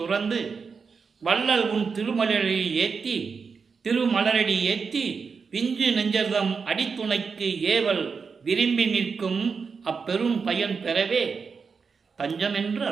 துறந்து வள்ளல் உன் திருமலரடி ஏத்தி பிஞ்சு நெஞ்சர்தம் அடித்துணைக்கு ஏவல் விரும்பி நிற்கும் அப்பெரும் பயன் பெறவே தஞ்சம் என்று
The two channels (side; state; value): left; quieter; 5.4 dB